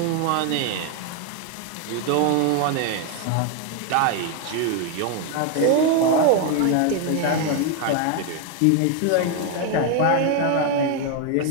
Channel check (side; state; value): both; different; correlation 0.01